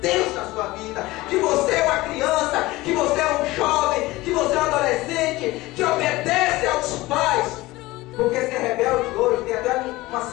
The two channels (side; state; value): right; quieter; 19.4 dB